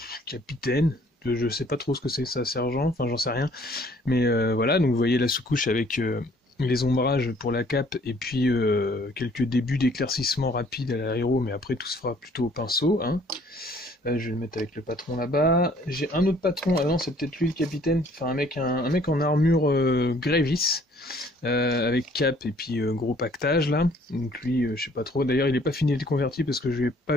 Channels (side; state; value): both; normal; correlation 0.59